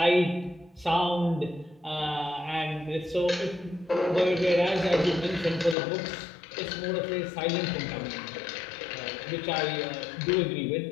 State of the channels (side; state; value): right; drops out; at 5.8 s